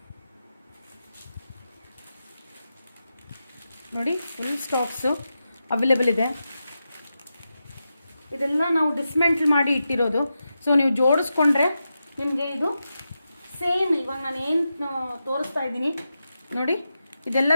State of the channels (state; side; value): inverted; both; correlation -0.89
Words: ನೋಡಿ, ಫುಲ್ ಸ್ಟಾಕ್ಸು ಅವೈಲೇಬಲ್ ಇದೆ. ಇದೆಲ್ಲ ನಾವು ಡಿಸ್ಮ್ಯಾಂಟಲ್ ಮಾಡಿ ಇಟ್ಟಿರೋದು. ಸೊ ನೀವು ಜೋಡಿಸ್ಕೊಂಡ್ರೆ ನಿಮಗೆ ಇದು ಸೇಮ್ ಇವಾಗ ನಾನು ಏನು ತೋರಿಸ್ತಾ ಇದ್ದೀನಿ ನೋಡಿ, ಇದೆಲ್ಲ